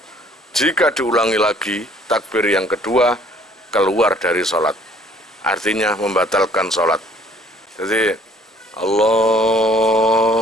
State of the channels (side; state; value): both; normal; correlation 0.58